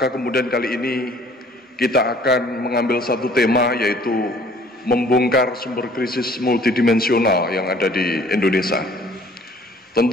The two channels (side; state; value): both; normal; correlation 0.55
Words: kemudian kali ini kita akan mengambil satu tema, yaitu membongkar sumber krisis multidimensional yang ada di Indonesia.